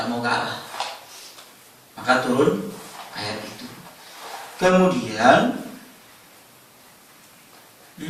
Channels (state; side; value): identical; both; correlation 1.00